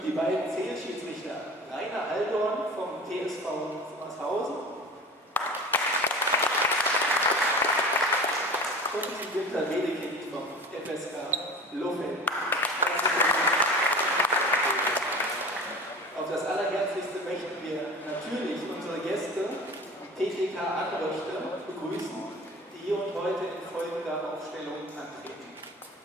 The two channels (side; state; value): both; normal; correlation 0.37